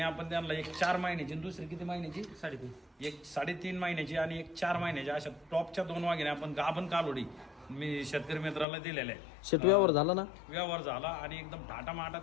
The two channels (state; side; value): drops out; right; at 8.7 s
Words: आपण त्यांना एक 4 महिन्याची आणि दुसरी किती महिन्याची? 3.5. एक 3.5 महिन्याची आणि एक 4 महिन्याची अशा टॉपच्या 2 वाघिणी आपण गाभण कालोडी मी शेतकरी मित्राला दिलेल्या आहे. शेठ, व्यवहार झाला ना? व्यवहार झाला आणि एकदम थाटामाटा